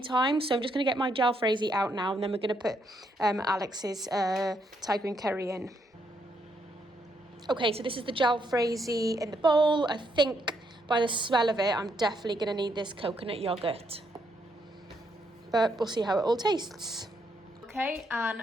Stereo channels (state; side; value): normal; both; correlation 0.76